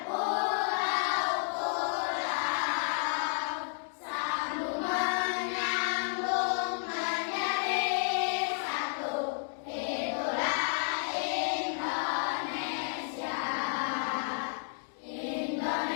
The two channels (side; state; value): right; silent; digital silence